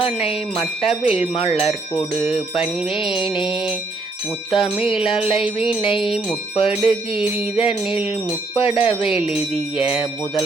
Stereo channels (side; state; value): left; quieter; 3.3 dB